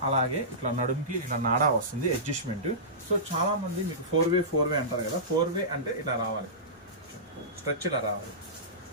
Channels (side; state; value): both; normal; correlation -0.19